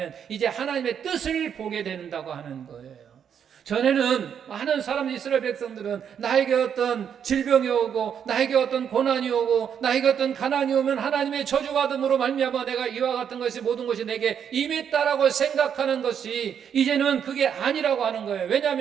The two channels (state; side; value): quieter; left; 8.1 dB